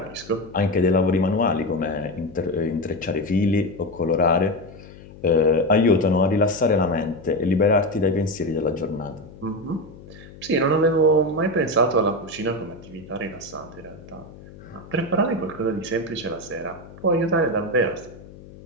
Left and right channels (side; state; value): left; noise; hum, 19 dB below the sound